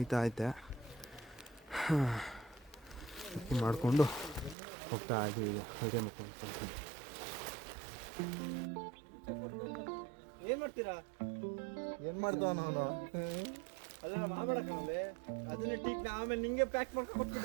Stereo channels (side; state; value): left; drops out; at 4.5 s